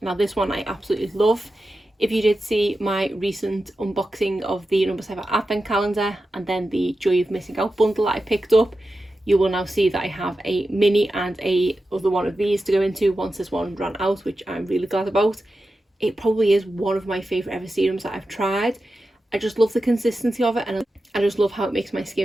Now this one I absolutely love. If you did see my recent unboxing of the number 7 Advent Calendar and then the Joy of Missing Out bundle that I picked up, you will now see that I have a mini and a other one of these to go into once this one ran out, which I'm really glad about. It probably is one of my favourite ever serums that I've tried. I just love the consistency of it, and I just love how it makes my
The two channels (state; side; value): normal; both; correlation 0.91